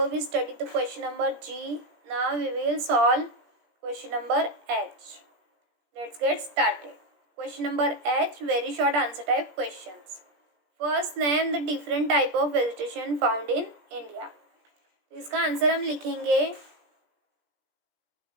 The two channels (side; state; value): left; late; 17 ms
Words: we studied the question number G. Now we will solve question number H. Let's get started. Question number H, very short answer type questions. First, name the different type of vegetation found in India. इसका answer हम लिखेंगे